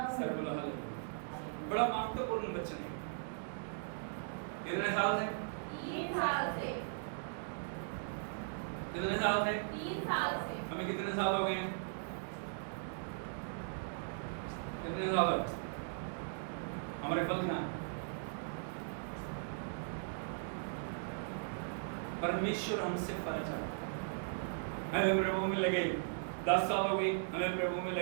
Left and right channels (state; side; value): silent; left; digital silence